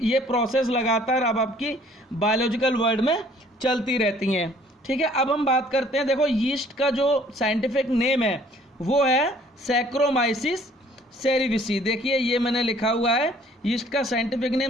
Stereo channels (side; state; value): both; normal; correlation 0.57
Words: प्रोसेस लगातार अब आपकी बायोलॉजिकल वर्ल्ड में चलती रहती हैं। ठीक है, अब हम बात करते हैं, देखो यीस्ट का जो साइंटिफिक नेम है वो है सैक्रोमाइसिस सेरेविसी। देखिए ये मैंने लिखा हुआ है, यीस्ट का साइंटिफिक